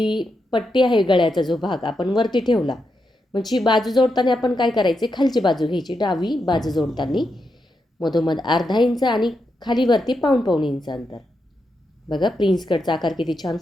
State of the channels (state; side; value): normal; both; correlation 0.85